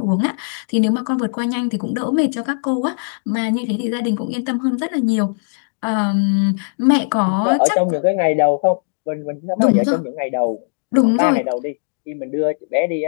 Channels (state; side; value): silent; right; 67 dB below the other